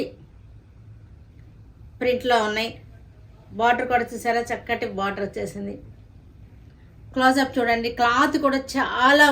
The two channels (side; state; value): both; identical; correlation 1.00